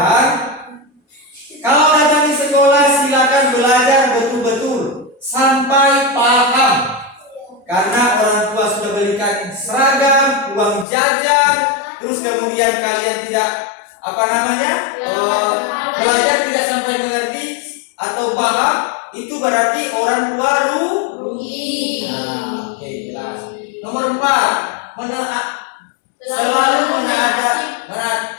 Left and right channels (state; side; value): drops out; right; at 10.9 s